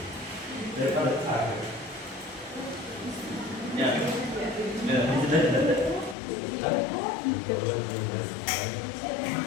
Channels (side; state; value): right; drops out; at 6.2 s